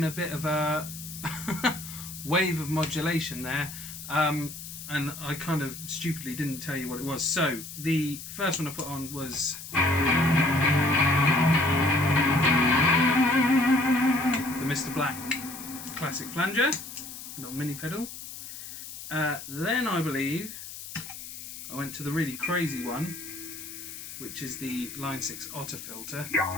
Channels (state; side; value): noise; left; hiss, 11 dB below the sound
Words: a bit of a wave of modulation there, and I kind of stupidly didn't tell you what it was. So the first one I put on was the Mr. Black classic flanger, little mini pedal. Then I believe I went to the really crazy one, which is the Line6 Otto Filter.